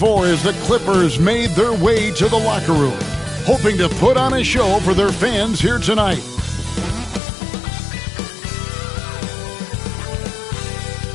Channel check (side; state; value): right; drops out; at 7.2 s